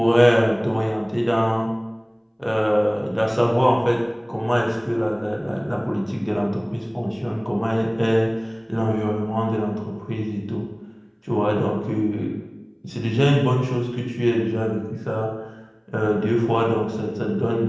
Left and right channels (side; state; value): both; identical; correlation 1.00